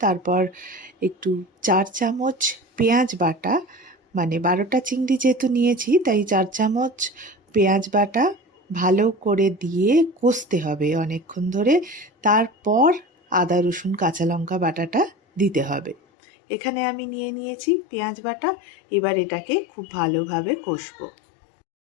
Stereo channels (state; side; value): drops out; right; at 16.0 s